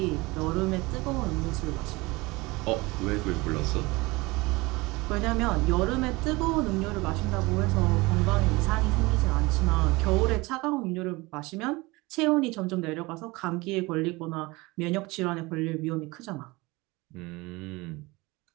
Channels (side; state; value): left; quieter; 22.9 dB